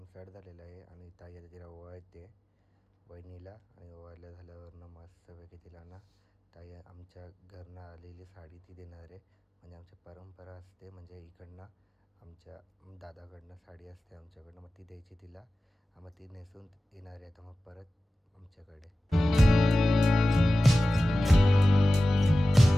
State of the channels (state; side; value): normal; both; correlation 0.95